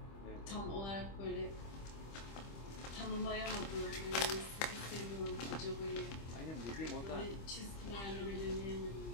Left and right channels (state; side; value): late; right; 25 ms